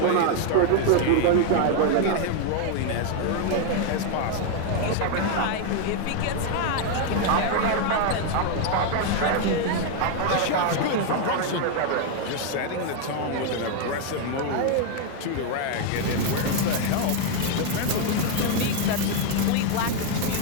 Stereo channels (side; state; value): both; different; correlation 0.01